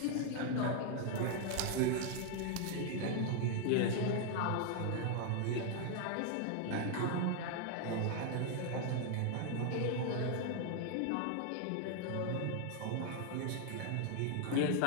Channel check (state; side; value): different; both; correlation 0.00